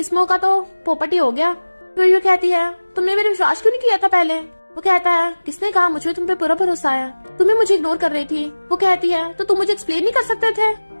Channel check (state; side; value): inverted; both; correlation -1.00